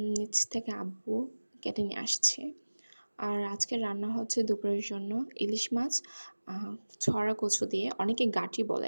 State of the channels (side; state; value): both; inverted; correlation -1.00